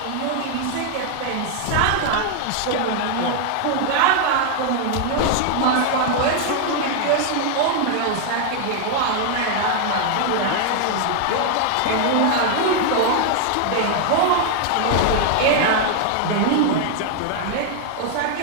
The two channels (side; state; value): both; different; correlation 0.00